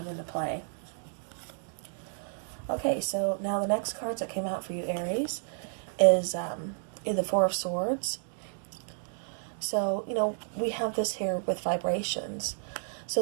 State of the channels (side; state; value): left; silent; digital silence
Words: into play. Okay, so now the next cards that came out for you, Aries, is the Four of Swords. So, we have this here with vibrations. So